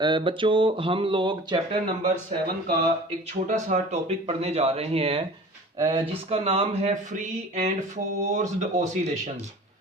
बच्चों, हम लोग चैप्टर नंबर 7 का एक छोटा सा टॉपिक पढ़ने जा रहे हैं जिसका नाम है फ्री एंड फोर्स्ड ऑसिलेशंस।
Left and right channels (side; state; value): both; normal; correlation 0.42